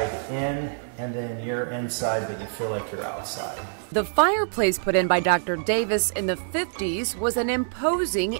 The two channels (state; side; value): silent; left; 61 dB below the other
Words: in, and then you're inside, but you feel like you're outside. The fireplace put in by Dr. Davis in the 50s was an imposing